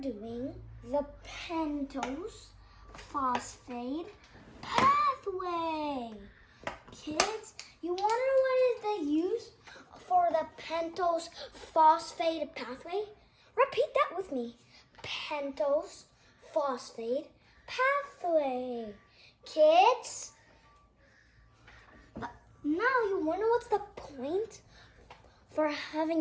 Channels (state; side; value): identical; both; correlation 1.00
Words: doing the pentose phosphate pathway. Kids, you want to know what is the use for the pentose phosphate pathway? Repeat that with me. Pentose phosphate pathway. Kids, now you wonder what's the point for